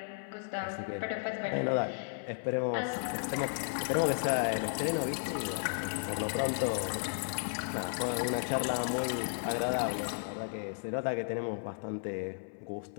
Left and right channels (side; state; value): right; silent; 55 dB below the other